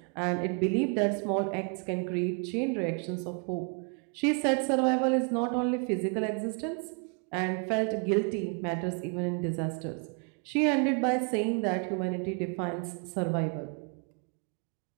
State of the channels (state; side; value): quieter; left; 38.0 dB